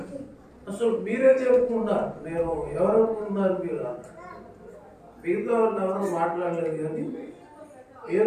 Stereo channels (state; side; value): identical; both; correlation 1.00